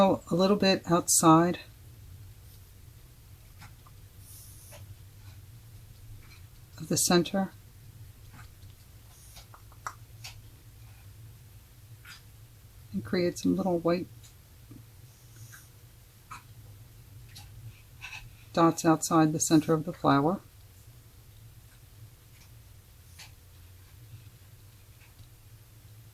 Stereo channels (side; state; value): both; identical; correlation 1.00